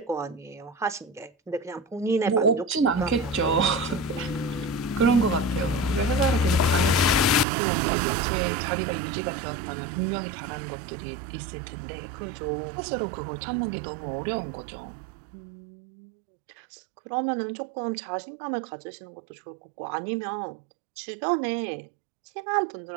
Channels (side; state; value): left; drops out; at 7.5 s